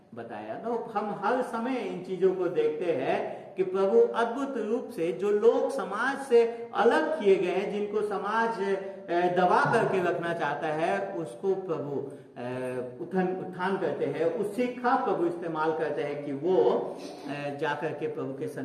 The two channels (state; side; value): identical; both; correlation 1.00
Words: बताया। तो हम हर समय इन चीजों को देखते हैं कि प्रभु अद्भुत रूप से जो लोग समाज से अलग किए गए हैं, जिनको समाज दबा करके रखना चाहता है, उसको प्रभु उत्थान करते हैं, उसी का प्रभु इस्तेमाल करते हैं कि वो जाकर के प्रभु के